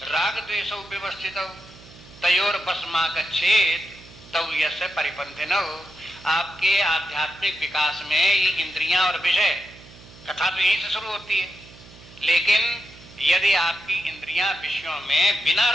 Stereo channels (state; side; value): noise; right; hum, 21 dB below the sound